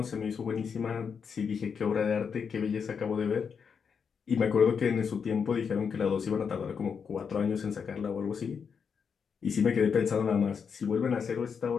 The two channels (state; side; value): quieter; right; 6.4 dB